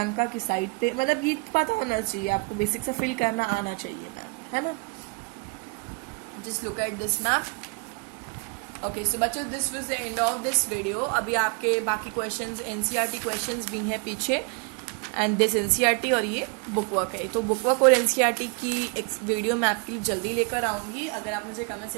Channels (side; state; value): left; quieter; 31.7 dB